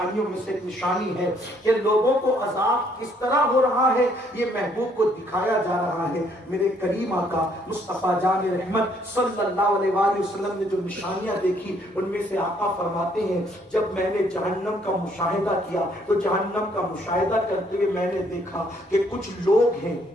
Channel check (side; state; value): both; normal; correlation 0.67